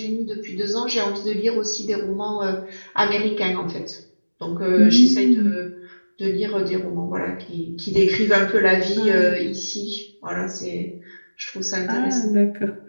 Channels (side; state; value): both; inverted; correlation -1.00